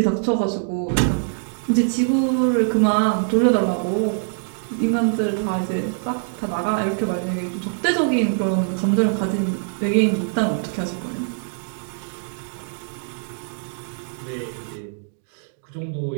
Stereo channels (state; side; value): silent; left; digital silence